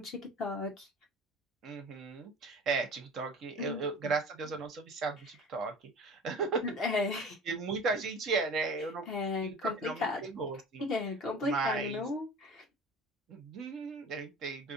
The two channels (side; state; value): both; normal; correlation 0.40